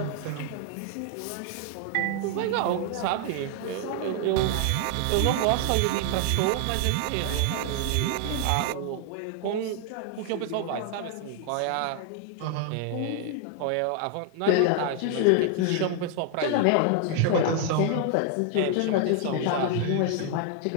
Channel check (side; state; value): both; different; correlation 0.00